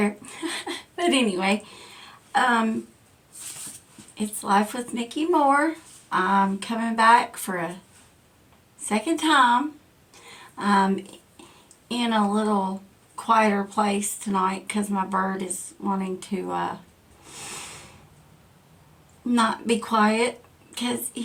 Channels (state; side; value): identical; both; correlation 1.00